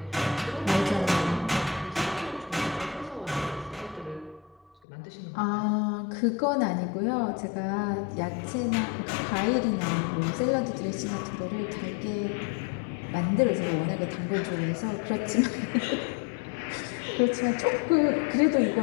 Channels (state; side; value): drops out; right; at 4.8 s